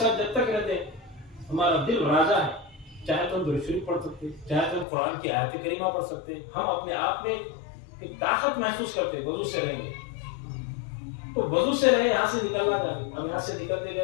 جب تک رہتے ہمارا دل راضا ہے، چاہے تو ہم درود شریف پڑھ سکتے، چاہے تو ہم قرآن کی آیت کریمہ پڑھ سکتے، ہم اپنے آپ میں کہ طاقت محسوس کرتے وضو سے رہیں گے تو وضو سے رہے یہاں سے نکلنا چاہتے اب یہاں سے نکلتے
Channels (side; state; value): right; drops out; at 4.9 s